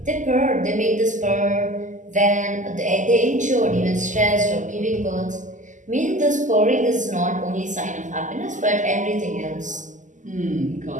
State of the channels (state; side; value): late; left; 0.37 ms